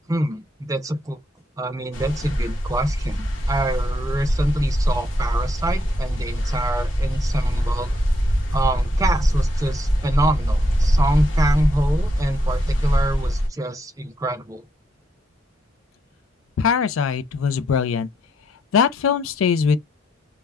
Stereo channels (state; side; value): normal; both; correlation 0.77